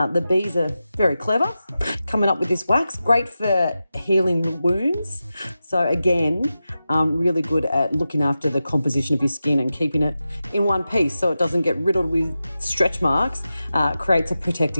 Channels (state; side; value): inverted; both; correlation -0.92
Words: bees are very clever coming up with this wax, great for healing wounds. So again, really good at looking after the composition of your skin and keeping it in one piece so it doesn't get riddled with stretch marks. Creates a